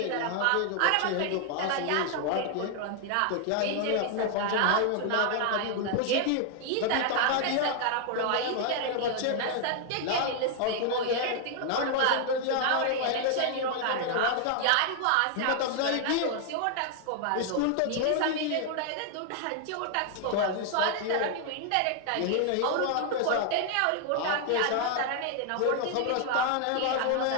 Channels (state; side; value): different; both; correlation 0.00